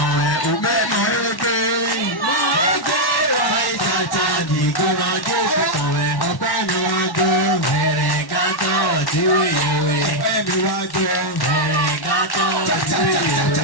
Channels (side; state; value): right; late; 1.1 ms